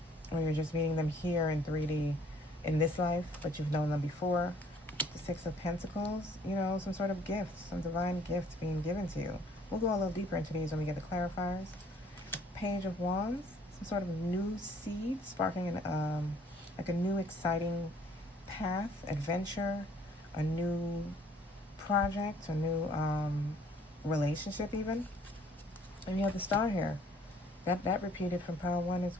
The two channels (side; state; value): both; normal; correlation 0.60